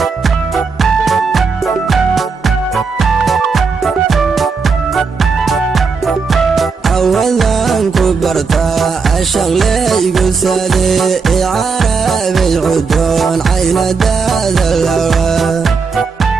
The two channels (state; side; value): quieter; left; 5.0 dB